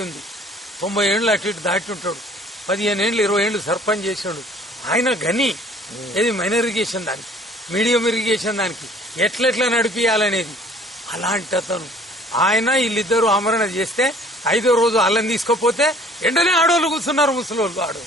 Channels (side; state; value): both; normal; correlation 0.53